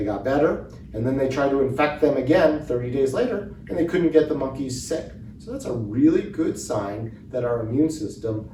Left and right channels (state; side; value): identical; both; correlation 1.00